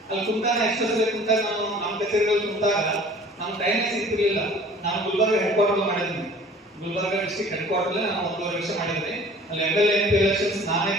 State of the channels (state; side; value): normal; both; correlation 0.49